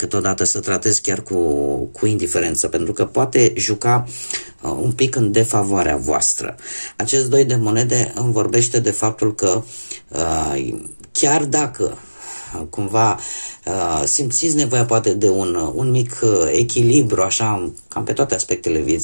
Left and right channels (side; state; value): both; inverted; correlation -1.00